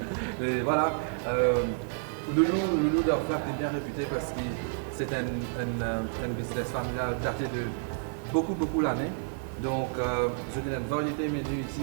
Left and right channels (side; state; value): left; silent; digital silence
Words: Et voilà. Loulou de Flac est bien réputé parce que c'est un business familial daté de beaucoup d'années. Donc, je donne une variété de menus